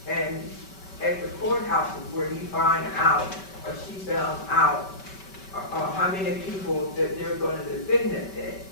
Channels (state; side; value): late; right; 5.2 ms